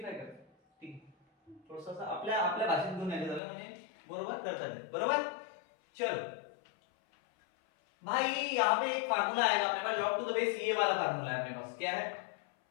कर, ठीक आहे, थोडंसं असं आपल्या आपल्या भाषेत घेऊन यायचं झालं म्हणजे बरोबर करता येईल, बरोबर। चलो भाई यहाँ पे एक फार्मूला आएगा अपने पास, log टू द बेस ये वाला फार्मूला है अपने पास, क्या है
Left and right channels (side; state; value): right; drops out; at 3.4 s